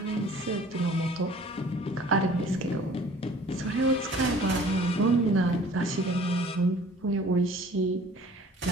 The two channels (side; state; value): both; normal; correlation 0.50